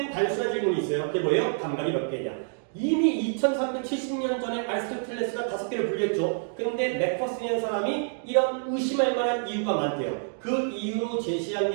단순한 질문이 있어요. 그게 뭐예요? 감각이 몇 개냐? 이미 2370년 전에 아리스토텔레스가 5개를 분류했죠. 근데 맥퍼슨이라는 사람이 이런 의심할 만한 이유가 많대요. 그 이유로 제시한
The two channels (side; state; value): left; silent; digital silence